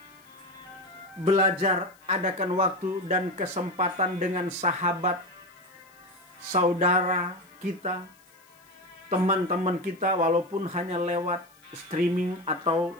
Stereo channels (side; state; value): left; noise; hiss, 30 dB below the sound